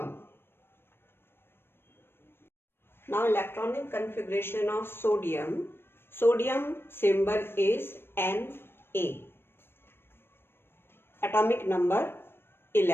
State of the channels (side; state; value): right; late; 0.11 ms